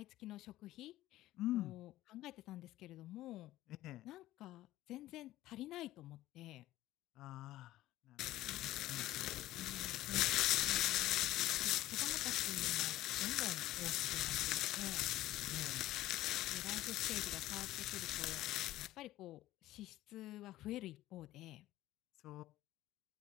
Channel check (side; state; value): right; quieter; 15.5 dB